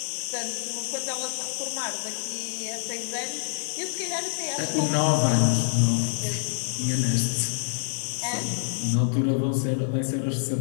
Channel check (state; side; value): silent; right; 60 dB below the other